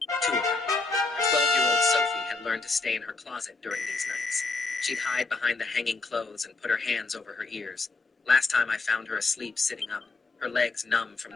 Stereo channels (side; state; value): right; quieter; 3.7 dB